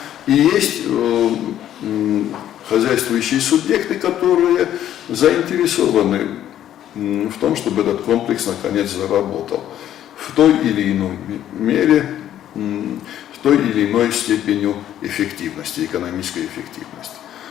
И есть хозяйствующие субъекты, которые заинтересованы в том, чтобы этот комплекс наконец заработал в той или иной мере, в той или иной степени эффективности, экономической эффективности.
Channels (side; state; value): right; quieter; 11.4 dB